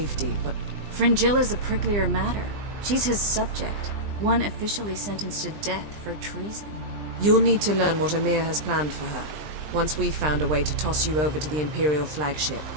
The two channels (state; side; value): late; left; 20 ms